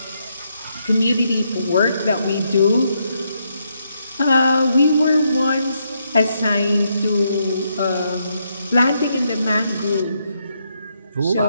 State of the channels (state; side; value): inverted; both; correlation -0.78